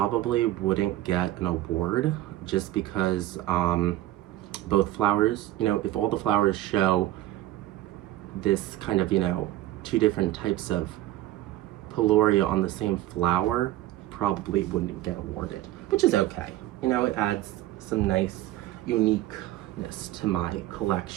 wouldn't get an award just because both flowers, if all the flowers show this kind of, two different types of peloria on the same flower, probably wouldn't get awarded, which is okay. It adds some nice uniqueness to my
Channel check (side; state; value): left; quieter; 15.2 dB